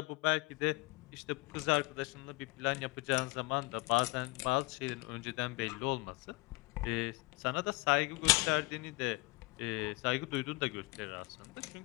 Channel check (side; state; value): right; quieter; 23.3 dB